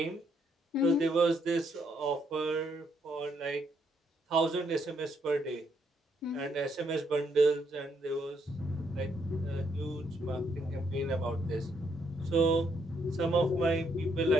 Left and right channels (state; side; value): normal; both; correlation 0.74